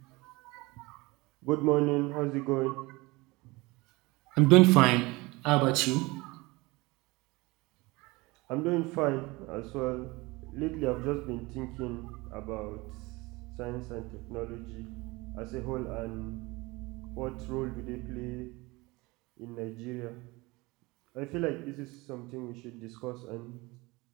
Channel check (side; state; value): left; quieter; 23.1 dB